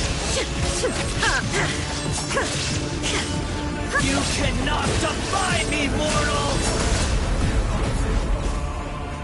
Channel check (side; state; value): both; identical; correlation 1.00